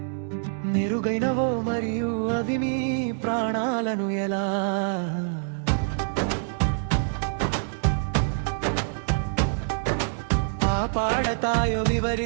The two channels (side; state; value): left; silent; digital silence